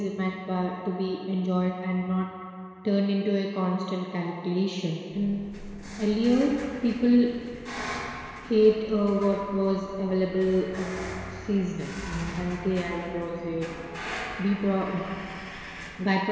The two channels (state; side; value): identical; both; correlation 1.00